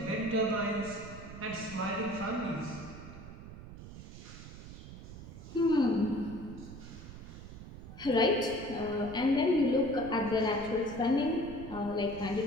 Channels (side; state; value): right; noise; rumble, 13 dB below the sound